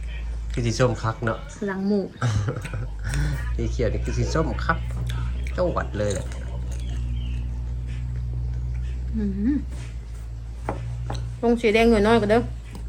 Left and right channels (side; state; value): both; identical; correlation 1.00